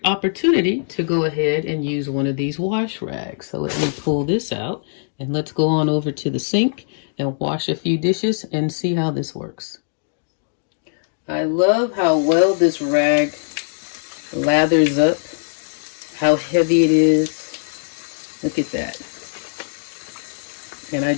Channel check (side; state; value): right; silent; digital silence